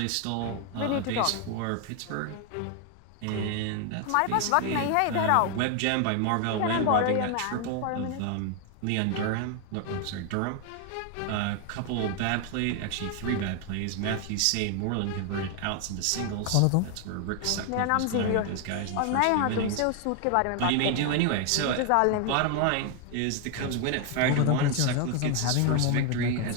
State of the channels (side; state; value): both; different; correlation 0.01